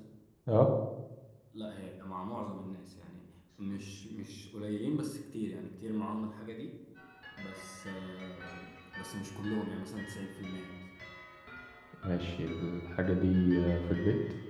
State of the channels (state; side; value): identical; both; correlation 1.00